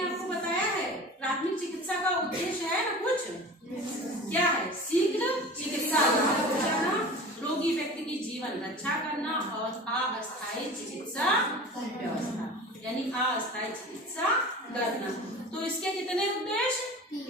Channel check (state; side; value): normal; both; correlation 0.37